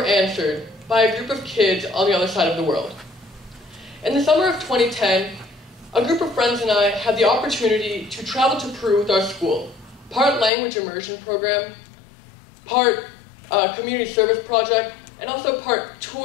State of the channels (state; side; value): drops out; right; at 10.5 s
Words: answered by a group of kids on the other side of the world. In the summer of 2010, a group of friends and I had the opportunity to travel to Peru with our school, part language immersion program, part community service project, and also part